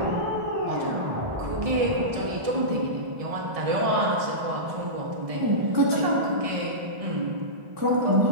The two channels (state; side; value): late; left; 1.6 ms